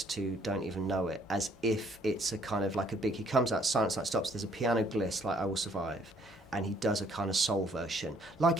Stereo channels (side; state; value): both; normal; correlation 0.64